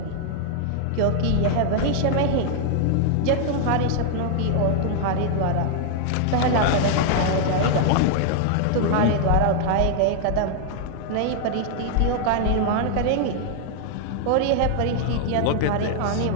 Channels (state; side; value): different; both; correlation 0.00